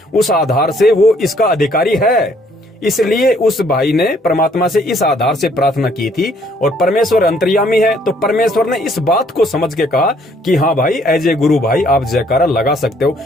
उस आधार से वो इसका अधिकारी है। इसलिए उस भाई ने परमात्मा से इस आधार से प्रार्थना की थी और परमेश्वर अंतर्यामी है, तो परमेश्वर ने इस बात को समझ के कहा कि हाँ भाई, एज ए गुरु भाई आप जयकारा लगा सकते हो।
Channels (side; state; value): both; normal; correlation 0.64